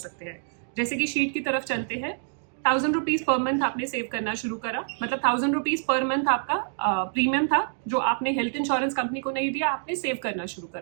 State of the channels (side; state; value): left; silent; digital silence